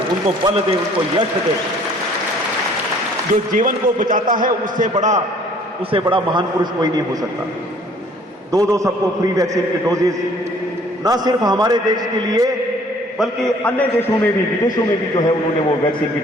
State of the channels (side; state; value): both; normal; correlation 0.56